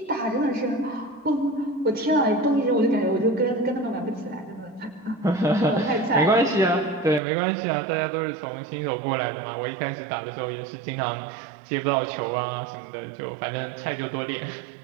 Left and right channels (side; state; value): left; drops out; at 7.2 s